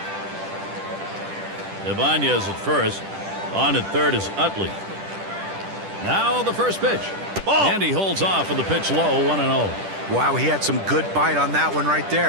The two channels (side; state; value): left; late; 10 ms